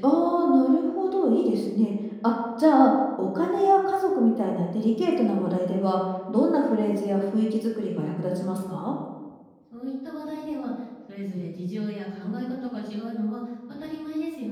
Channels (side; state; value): both; identical; correlation 1.00